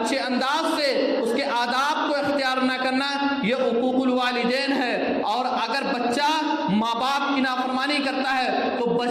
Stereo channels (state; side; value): identical; both; correlation 1.00